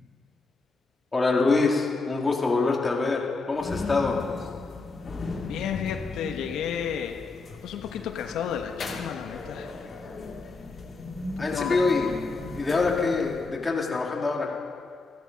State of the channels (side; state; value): right; quieter; 3.8 dB